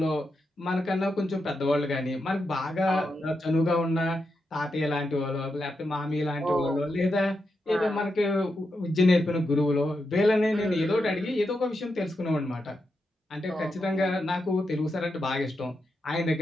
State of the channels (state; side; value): normal; both; correlation 0.86